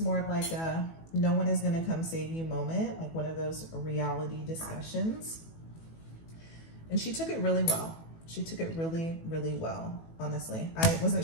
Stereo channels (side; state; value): right; late; 18 ms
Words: of like a no one is gonna come save you moment, like one of those reality discussions. And she took it really well. She took it really, really well, honestly. I wasn't